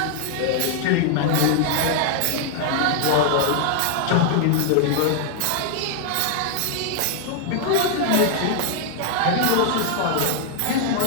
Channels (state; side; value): different; both; correlation 0.00